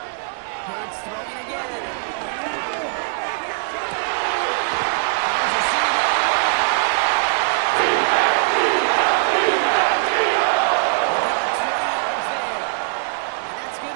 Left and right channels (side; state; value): left; silent; 65 dB below the other